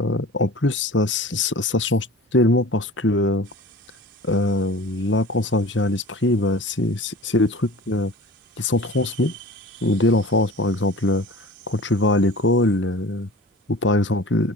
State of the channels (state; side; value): normal; both; correlation 0.41